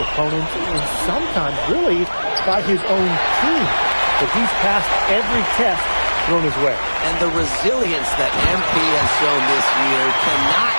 and sometimes really by his own team. But he's passed every test thrown his way. And the resilience that MP has shown this year cannot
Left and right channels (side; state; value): both; inverted; correlation -1.00